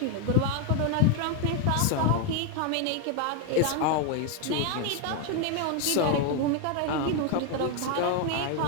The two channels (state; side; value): different; both; correlation 0.01